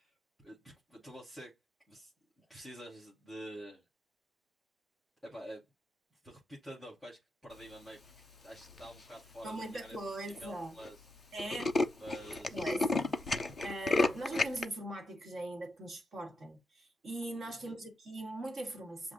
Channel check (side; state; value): both; normal; correlation 0.84